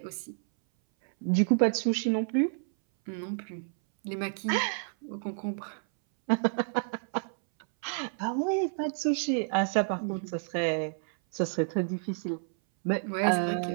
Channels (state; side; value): silent; left; 58 dB below the other